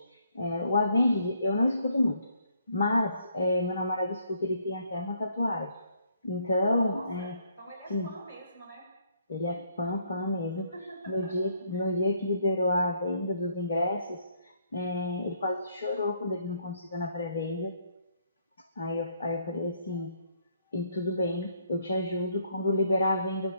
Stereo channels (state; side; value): inverted; both; correlation -0.69